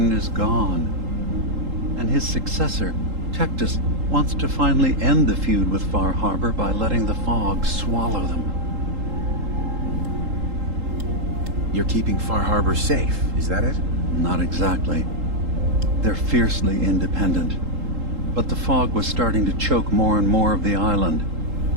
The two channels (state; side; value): late; left; 3.8 ms